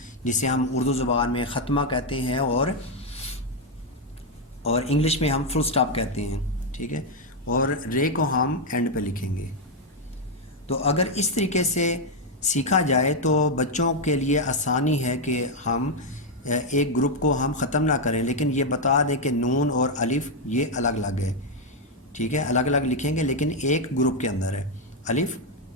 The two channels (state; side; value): normal; both; correlation 0.02